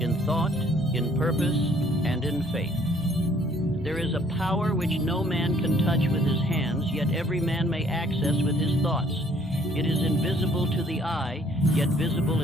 in thought, in purpose, and in faith. There is a power which no man can touch with his hands, yet every man may access with his thoughts. It is invisible to the eye, yet visible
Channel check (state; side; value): normal; both; correlation 0.61